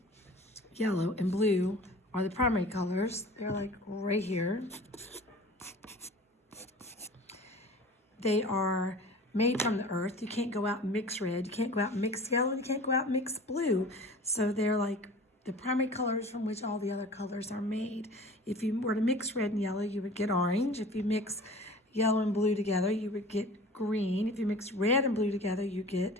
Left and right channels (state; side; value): normal; both; correlation 0.42